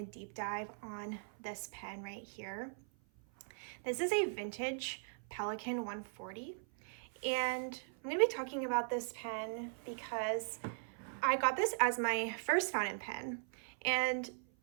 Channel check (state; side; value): silent; left; 51 dB below the other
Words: deep dive on this pen right here. This is a vintage Pelikan 140, and I'm going to be talking about this pen because I got this as my first fountain pen, and